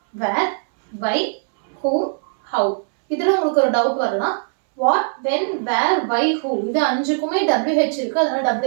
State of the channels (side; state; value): left; silent; 66 dB below the other